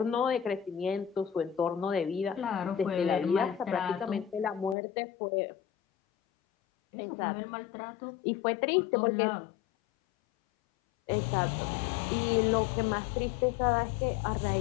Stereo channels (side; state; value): right; drops out; at 4.8 s